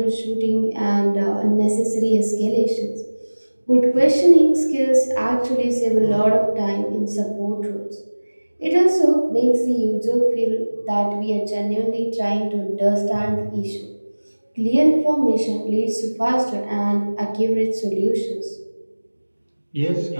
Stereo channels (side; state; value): both; inverted; correlation -1.00